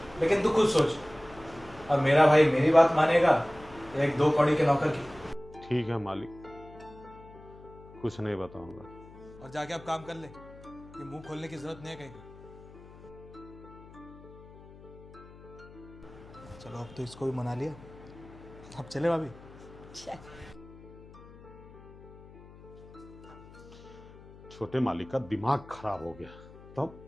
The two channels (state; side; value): noise; left; hum, 20 dB below the sound